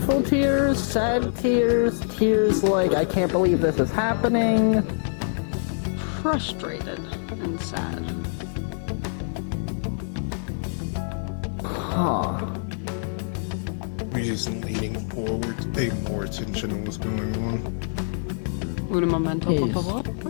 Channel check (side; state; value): right; silent; digital silence